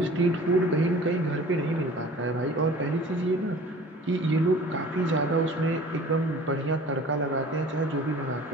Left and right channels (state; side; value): normal; both; correlation 0.45